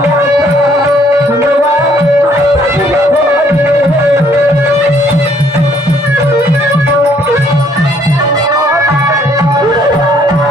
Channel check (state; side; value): normal; both; correlation 0.65